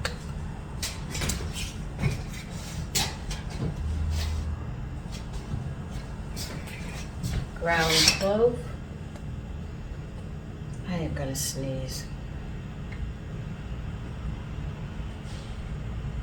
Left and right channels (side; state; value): both; identical; correlation 1.00